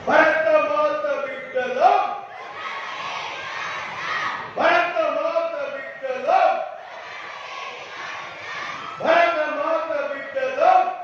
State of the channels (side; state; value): both; identical; correlation 1.00